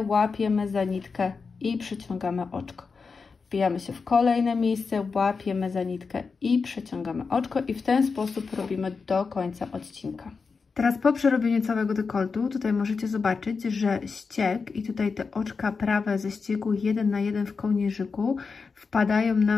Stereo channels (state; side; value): quieter; right; 4.9 dB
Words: łapiemy za nitkę i przeciągamy oczko. Wbijamy się w kolejne miejsce, łapiemy za nitkę i przeciągamy oczko i w ten sposób robimy do końca odcinka. Teraz po przerobieniu całego dekoltu, tutaj możecie zobaczyć, że ścieg i tutaj te oczka prawe ze ściegu 1 na 1 w kołnierzyku wpadają